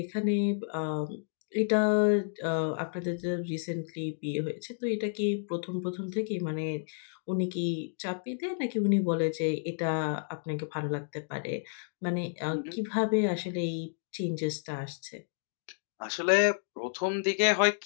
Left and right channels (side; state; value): right; silent; digital silence